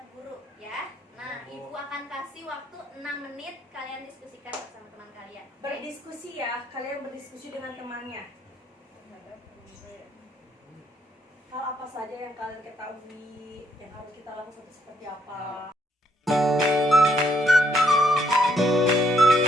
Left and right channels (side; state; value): both; normal; correlation 0.71